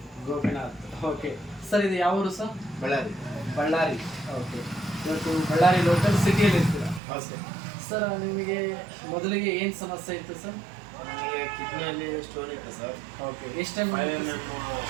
ಗೋಪಿನಾಥ್. ಓಕೆ ಸರ್, ಇದು ಯಾವ ಊರು ಸರ್? ಬಳ್ಳಾರಿ. ಬಳ್ಳಾರಿ. ಓಕೆ, ಇವತ್ತು ಬಳ್ಳಾರಿ ಲೋಕಲ್ ಸಿಟಿಯಲ್ಲಿ ಇರ್ತೀರಾ? ನಮಸ್ತೆ. ಸರ್, ನಿಮಗೆ ಮೊದಲಿಗೆ ಏನು ಸಮಸ್ಯೆ ಇತ್ತು ಸರ್? ನನಗೆ ಕಿಡ್ನಿಯಲ್ಲಿ ಸ್ಟೋನ್ ಇತ್ತು ಸರ್. ಓಕೆ, ಎಷ್ಟು ಟೈಮ್? 5 mm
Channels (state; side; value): drops out; left; at 7.0 s